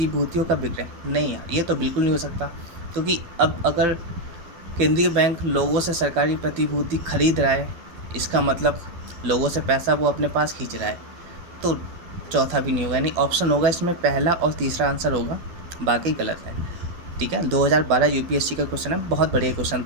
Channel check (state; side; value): late; left; 12 ms